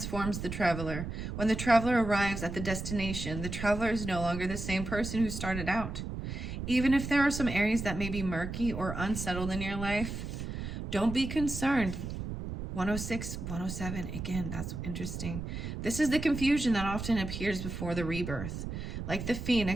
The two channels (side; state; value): right; noise; rumble, 6 dB below the sound